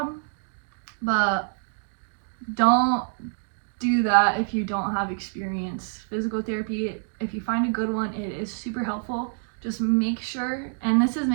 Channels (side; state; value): left; silent; digital silence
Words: but don't do that if you don't have experience. Physical therapy, if you find a good one, it is super helpful. Just make sure, and this is